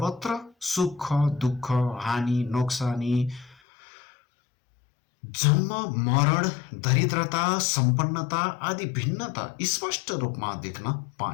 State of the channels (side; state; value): right; drops out; at 3.6 s